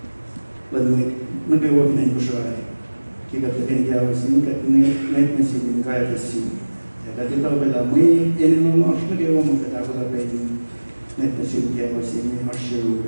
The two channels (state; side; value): inverted; both; correlation -1.00